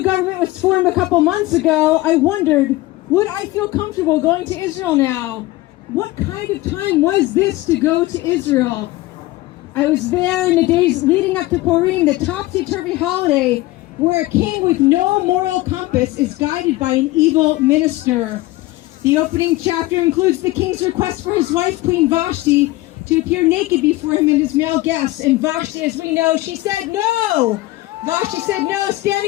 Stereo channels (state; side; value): quieter; right; 18.7 dB